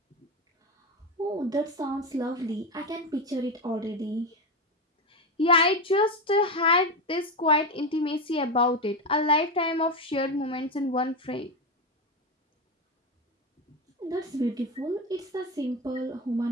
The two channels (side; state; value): both; normal; correlation 0.15